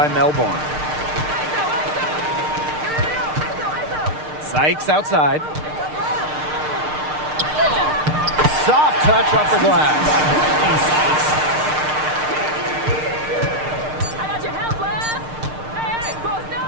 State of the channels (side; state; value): left; late; 6.6 ms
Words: Melbourne. Sykes outside. Soft touch off the glass.